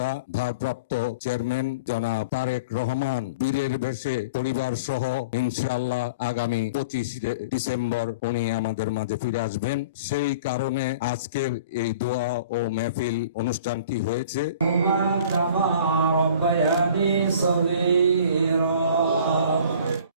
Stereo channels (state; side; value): inverted; both; correlation -0.43